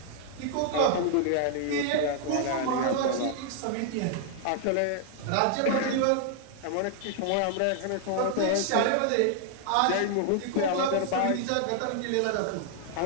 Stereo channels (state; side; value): different; both; correlation 0.00